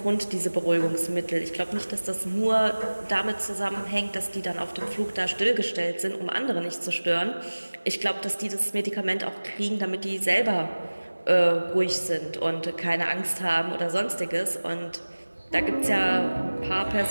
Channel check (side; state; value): both; inverted; correlation -1.00